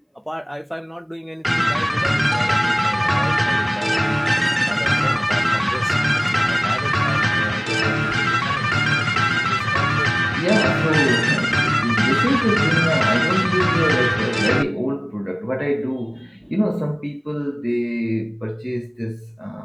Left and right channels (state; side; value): identical; both; correlation 1.00